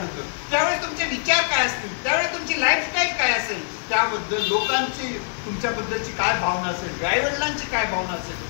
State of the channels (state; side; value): silent; right; 63 dB below the other